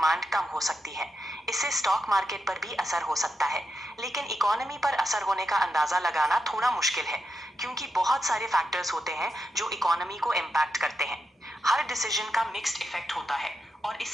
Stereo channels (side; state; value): both; normal; correlation 0.86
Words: कम हो सकती है। इससे स्टॉक मार्केट पर भी असर हो सकता है, लेकिन इकोनॉमी पर असर होने का अंदाजा लगाना थोड़ा मुश्किल है, क्योंकि बहुत सारे फैक्टर्स होते हैं जो इकोनॉमी को इम्पैक्ट करते हैं। हर डिसीजन का मिक्स्ड इफेक्ट होता है और